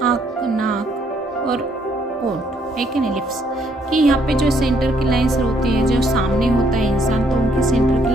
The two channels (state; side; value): normal; both; correlation 0.69